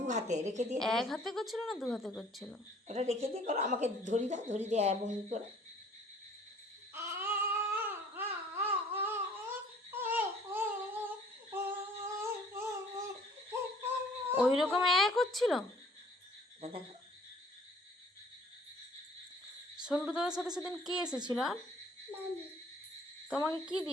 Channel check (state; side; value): normal; both; correlation 0.55